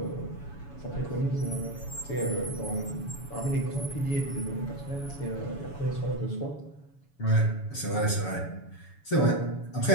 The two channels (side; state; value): right; late; 7.0 ms